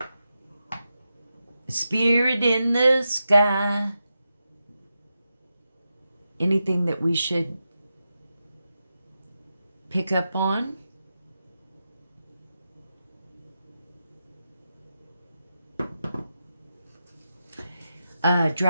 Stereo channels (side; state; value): both; inverted; correlation -0.88